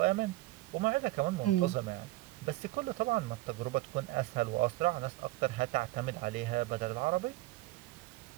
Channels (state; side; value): quieter; left; 19.2 dB